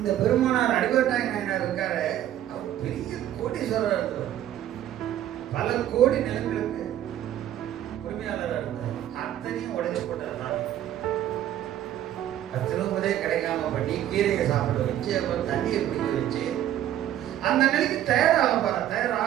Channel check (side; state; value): left; quieter; 11.9 dB